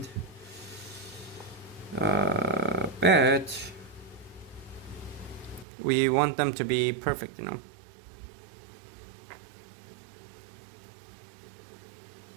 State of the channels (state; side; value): drops out; left; at 5.7 s